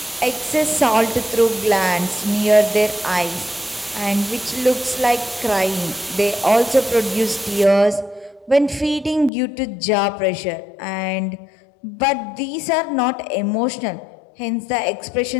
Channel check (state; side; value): drops out; right; at 9.3 s